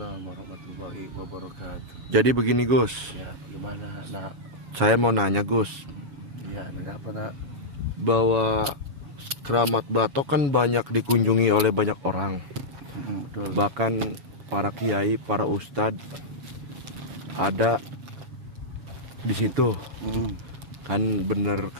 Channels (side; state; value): left; late; 7.0 ms